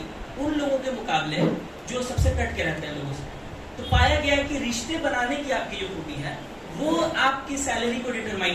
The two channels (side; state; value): both; identical; correlation 1.00